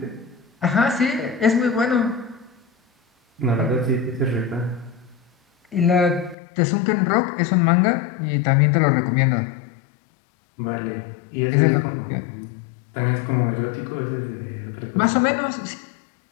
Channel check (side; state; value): right; drops out; at 6.4 s